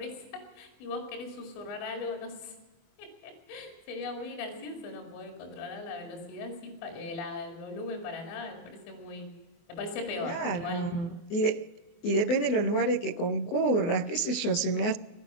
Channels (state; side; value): late; right; 24 ms